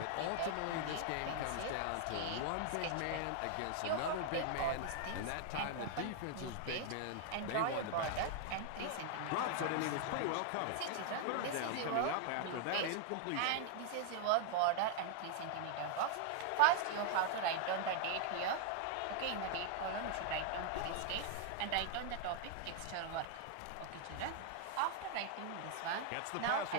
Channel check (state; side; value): different; both; correlation 0.00